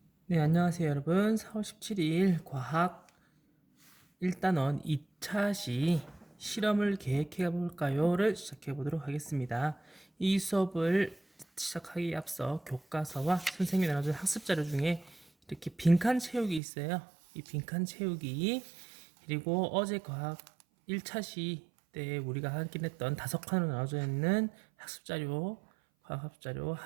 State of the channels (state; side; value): drops out; left; at 16.6 s